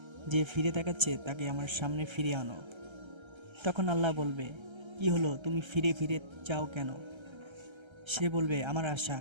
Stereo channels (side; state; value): left; late; 1.3 ms